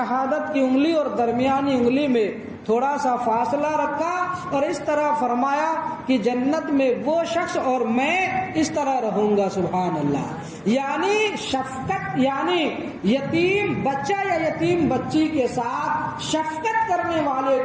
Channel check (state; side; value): identical; both; correlation 1.00